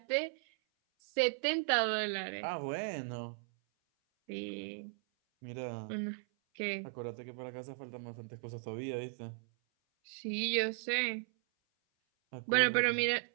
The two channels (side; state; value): left; silent; 53 dB below the other